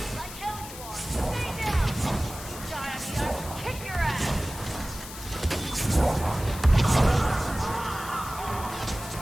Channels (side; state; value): left; noise; hiss, 13 dB below the sound